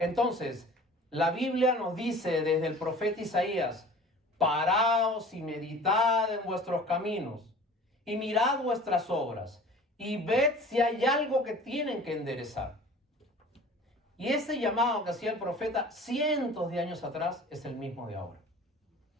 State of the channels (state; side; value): normal; both; correlation 0.44